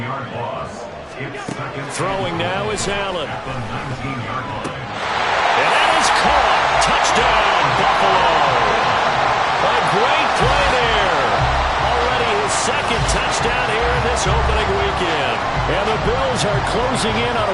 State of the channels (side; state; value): both; identical; correlation 1.00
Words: loss. Throwing now is Allen. At the 19-yard line. And that is caught. Touchdown, Buffalo. A great play there. Already his second touchdown here in this opening weekend. And the Bills are closing in on